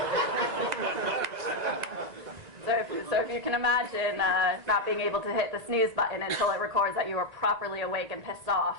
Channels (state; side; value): late; left; 1.9 ms